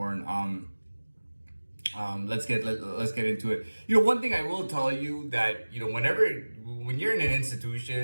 Let's get into it. One thing I will tell you that when you're in an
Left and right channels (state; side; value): inverted; both; correlation -1.00